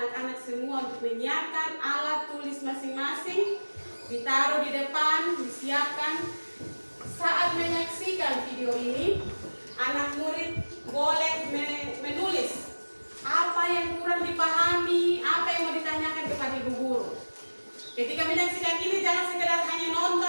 semua untuk menyiapkan alat tulis masing-masing, ditaruh di depan, disiapkan. Saat menyaksikan video ini, anak murid boleh menulis apa yang kurang dipahami, apa yang mau ditanyakan kepada ibu guru. Ketika menyaksikan ini jangan sekedar hanya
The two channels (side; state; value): both; inverted; correlation -1.00